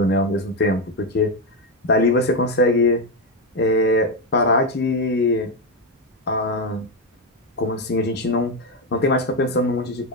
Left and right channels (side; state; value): both; normal; correlation 0.07